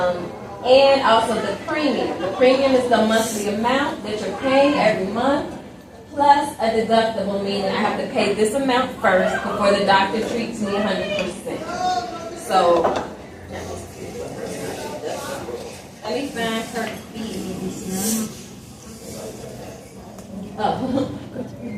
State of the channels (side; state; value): both; identical; correlation 1.00